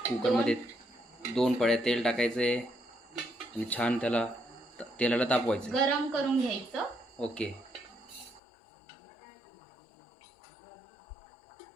कुकरमध्ये 2 पळ्या तेल टाकायचे आणि छान तेलाला तापवायचं, गरम करून घ्यायचं. ओके.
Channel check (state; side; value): drops out; right; at 8.4 s